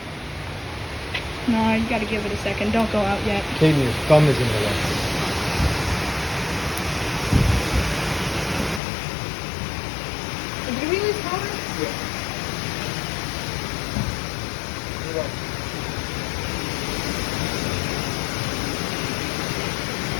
No, you gotta give it a second. Don't go out yet. Katie, your thumb is in the way. Did we lose power? Yeah.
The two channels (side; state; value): right; drops out; at 8.8 s